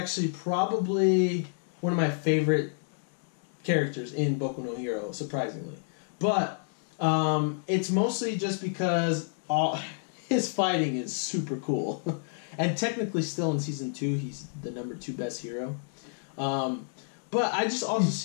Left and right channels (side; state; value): right; silent; digital silence